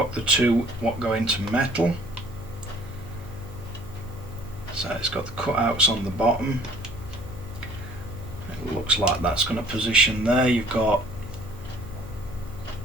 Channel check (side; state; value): left; noise; hum, 13 dB below the sound